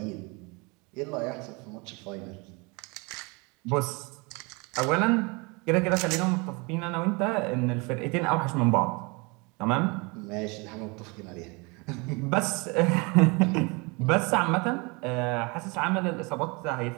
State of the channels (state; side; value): quieter; left; 28.6 dB